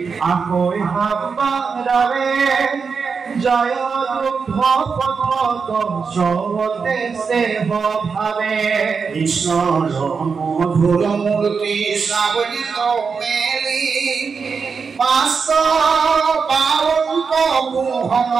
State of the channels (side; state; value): left; quieter; 5.4 dB